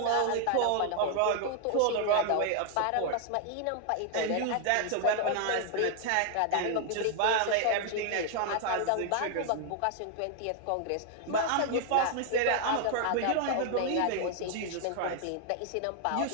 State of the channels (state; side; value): different; both; correlation 0.00